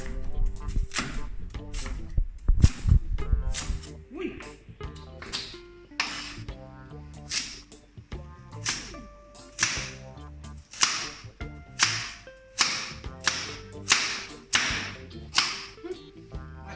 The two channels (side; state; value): both; identical; correlation 1.00